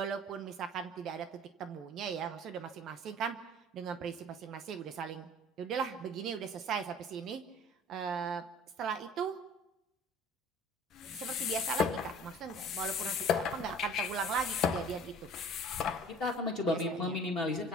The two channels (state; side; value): normal; both; correlation 0.47